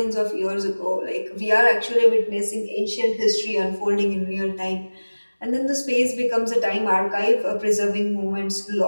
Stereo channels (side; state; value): both; inverted; correlation -1.00